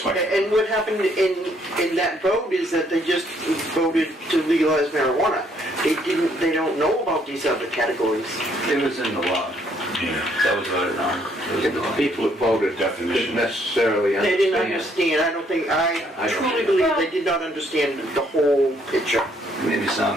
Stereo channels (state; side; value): normal; both; correlation 0.68